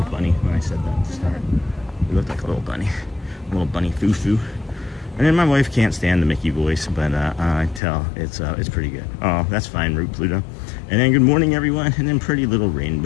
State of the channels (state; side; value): drops out; right; at 7.8 s